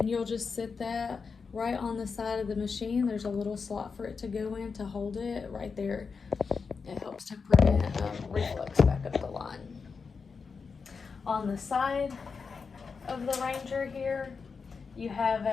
you'll just sit that right on the side of the machine. There's a little slot for it to go in to hold it right there. It helps to prevent reflux back up the line. On the side of the Ranger here, you have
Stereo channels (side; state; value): right; quieter; 5.2 dB